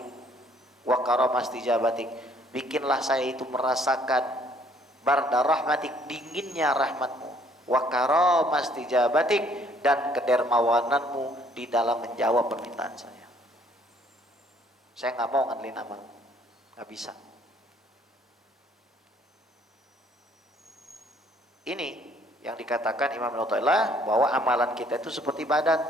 wa karamastijabatik, bikinlah saya itu merasakan barda rahmatik, dinginnya rahmatmu, wa karamastijabatik, dan kedermawananmu di dalam menjawab permintaan saya. Saya nggak mau ngandelin amal, nggak bisa. Ini yang dikatakan Imam Al-Mu'tazilah bahwa amalan kita itu seperti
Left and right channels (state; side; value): normal; both; correlation 0.62